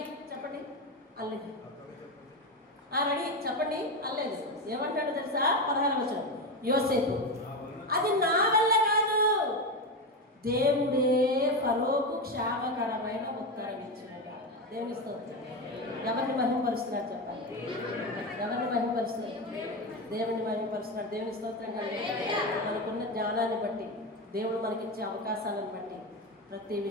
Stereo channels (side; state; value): both; normal; correlation 0.15